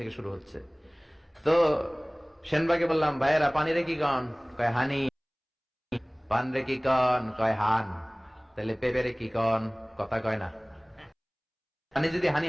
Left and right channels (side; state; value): both; identical; correlation 1.00